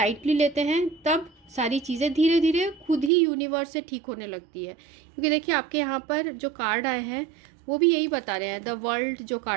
लेते हैं, तब सारी चीज़ें धीरे धीरे खुद ही यूनिवर्स से ठीक होने लगती है। क्योंकि देखिए आपके यहाँ पर जो कार्ड आए हैं वो भी यही बता रहे हैं। द वर्ल्ड जो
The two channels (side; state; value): left; drops out; at 3.1 s